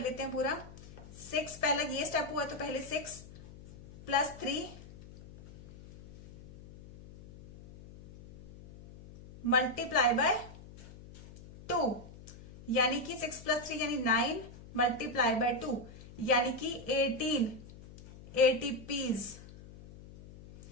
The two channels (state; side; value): noise; left; hum, 18 dB below the sound